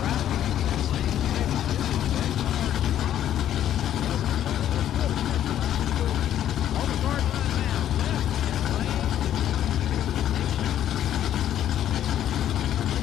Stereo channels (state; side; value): quieter; right; 11.1 dB